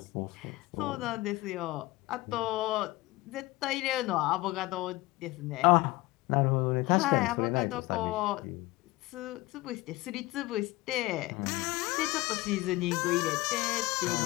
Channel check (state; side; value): quieter; right; 19.9 dB